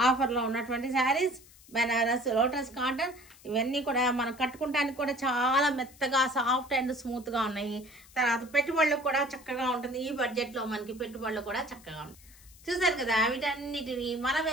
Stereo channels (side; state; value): left; noise; hiss, 23 dB below the sound